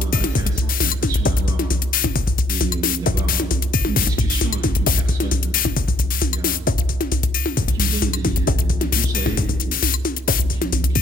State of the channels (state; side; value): normal; both; correlation 0.69